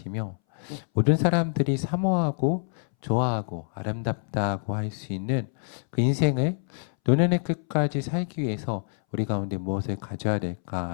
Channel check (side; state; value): right; silent; 61 dB below the other